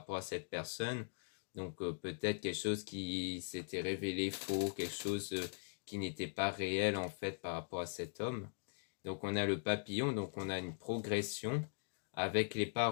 à cette personne. Donc peut-être quelque chose qui s'était révélé faux, quelque chose qui n'était pas réel en fait par rapport à cet homme. Donc on a le papillon, donc on a une progression avec les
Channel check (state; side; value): silent; right; digital silence